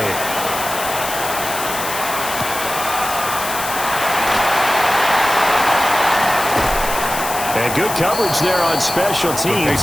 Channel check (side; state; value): left; noise; hiss, 7 dB below the sound